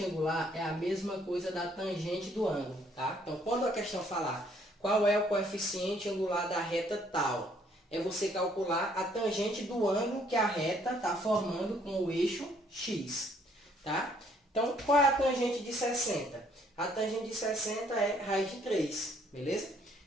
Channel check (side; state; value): both; normal; correlation 0.65